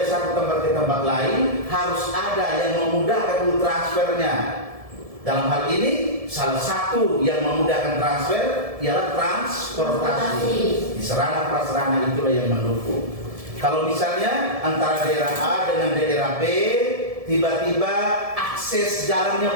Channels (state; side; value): late; left; 1.7 ms